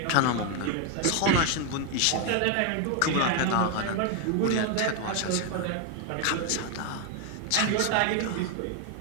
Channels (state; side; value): different; both; correlation 0.01